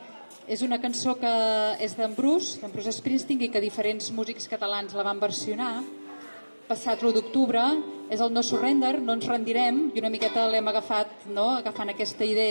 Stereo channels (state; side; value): inverted; both; correlation -1.00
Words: És una cançó que és d'en Bruce Springsteen, i que diferents músics catalans la van versionar. Passat l'1 d'octubre, és el No Surrender, no ens rendirem, i una miqueta l'hem agafat, agafant aquesta